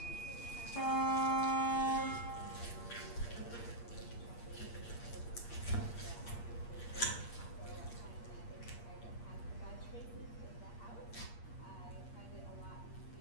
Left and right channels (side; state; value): right; late; 8.5 ms